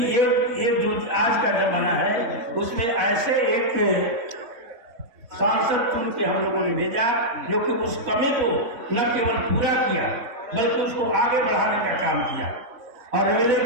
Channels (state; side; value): late; left; 4.1 ms